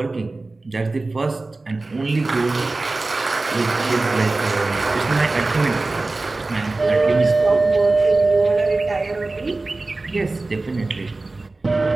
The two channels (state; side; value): quieter; left; 3.3 dB